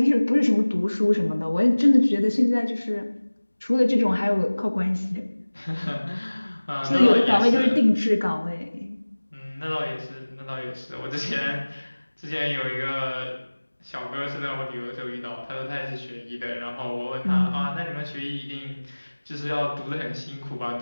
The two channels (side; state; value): both; inverted; correlation -1.00